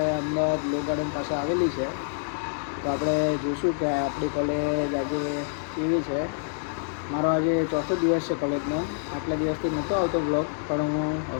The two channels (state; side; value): silent; right; 60 dB below the other